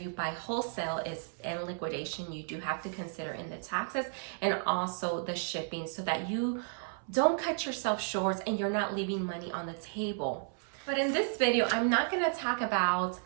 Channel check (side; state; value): left; silent; 56 dB below the other